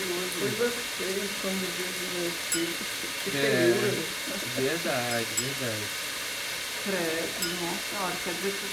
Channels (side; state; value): both; identical; correlation 1.00